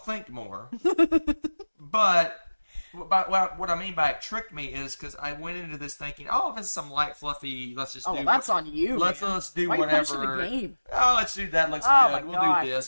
more. But what I mean by it tricked me is because I went into this thinking, oh, this is some light, fluffy, let's just do... that's on you, Let's do Why whatever. Are you punishing the game? Oh, let's do that. Looks Oh, good. my We'll gosh. do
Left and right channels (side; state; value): both; inverted; correlation -1.00